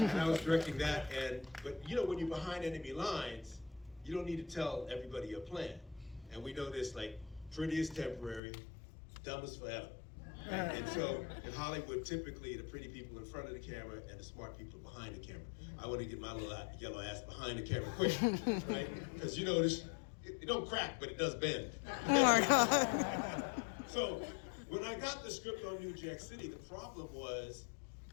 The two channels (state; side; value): drops out; right; at 8.4 s